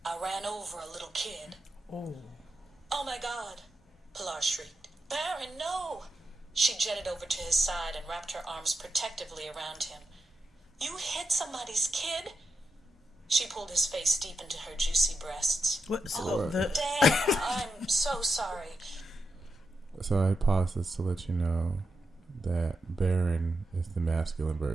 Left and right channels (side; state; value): both; normal; correlation 0.87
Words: I ran over a little kid. Oh my God, Pilar shrieked. Baron, no! She jetted over to his side and wrapped her arms protectively around him. You hit somebody's kid? She pulled his face deep into her juicy breasts. Damn, I'm so sorry. So I paused this to let you know that Baron is the masculine